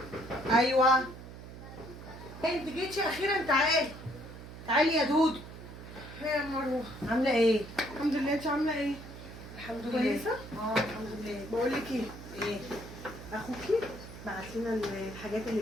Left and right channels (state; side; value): noise; right; hum, 13 dB below the sound